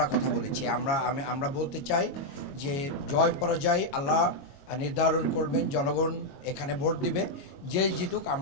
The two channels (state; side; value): late; right; 22 ms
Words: কথা বলেছি। আমরা বলতে চাই যে জয় পরাজয় আল্লাহ নির্ধারণ করবেন, জনগণ এখানে ভোট দিবে, যেই জিতুক